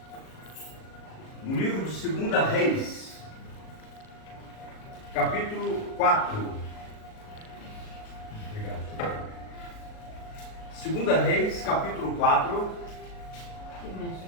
no livro de 2 Reis, capítulo 4. Obrigado. 2 Reis, capítulo 4.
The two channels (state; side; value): late; right; 37 ms